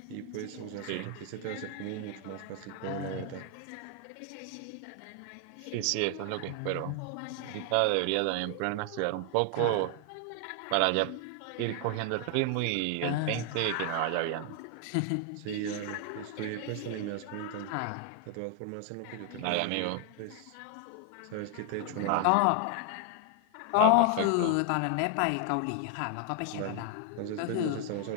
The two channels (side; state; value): both; different; correlation 0.00